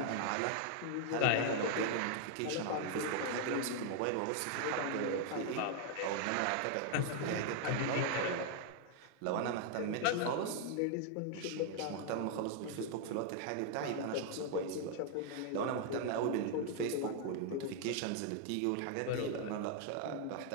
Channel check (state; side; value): different; both; correlation 0.00